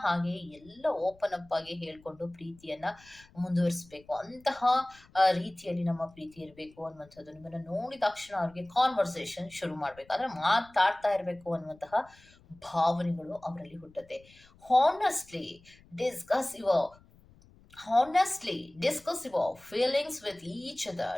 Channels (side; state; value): left; noise; rumble, 27 dB below the sound